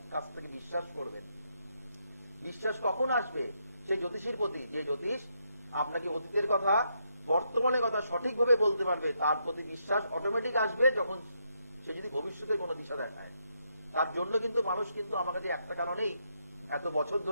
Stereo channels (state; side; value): inverted; both; correlation -0.78